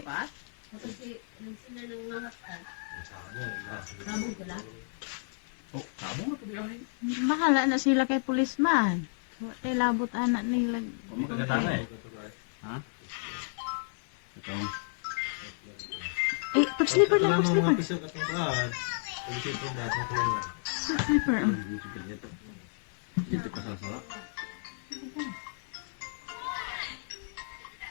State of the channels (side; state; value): right; silent; 57 dB below the other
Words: marupat? Kasi nagsila ng mga hatan. Sabog ka lang? oh, tamo na po di ay. bahala na sila kay pulisman. Tay labot anak nila. O magkakatama eh. Ha? Ito. Eh, pag-slipper lang, Mga pag-slipper. piso katong kuhan. Tulisin ko datong kuhan. Pag-slipper. Dito pa sa sala.